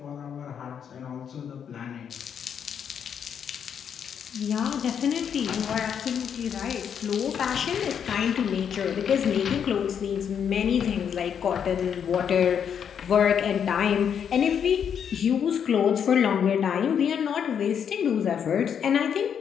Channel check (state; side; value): quieter; right; 7.9 dB